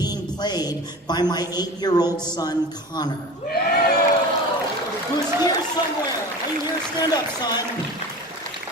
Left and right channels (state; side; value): normal; both; correlation 0.34